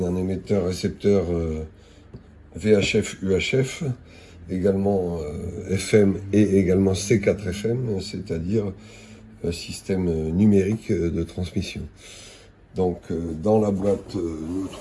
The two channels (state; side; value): identical; both; correlation 1.00